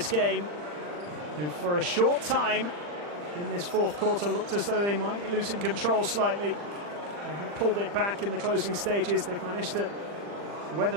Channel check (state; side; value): late; left; 40 ms